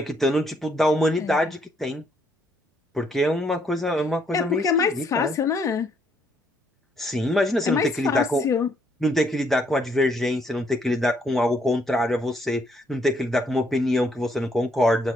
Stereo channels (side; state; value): both; normal; correlation 0.70